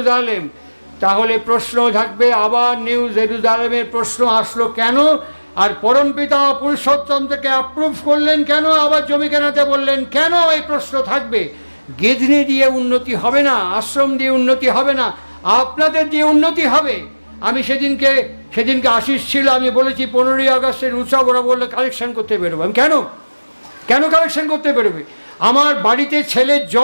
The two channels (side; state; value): both; inverted; correlation -1.00